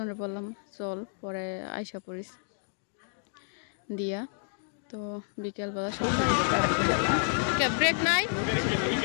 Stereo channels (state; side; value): silent; right; digital silence